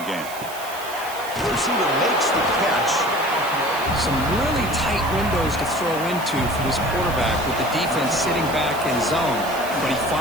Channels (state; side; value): noise; right; hiss, 14 dB below the sound